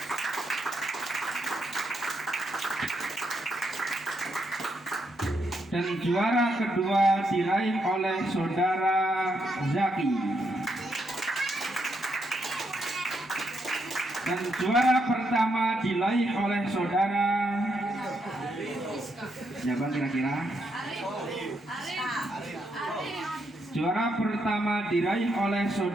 Dan juara kedua diraih oleh saudara Zaki. Dan juara pertama diraih oleh saudara siapa kira-kira? Juara pertama diraih oleh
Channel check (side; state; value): both; normal; correlation 0.79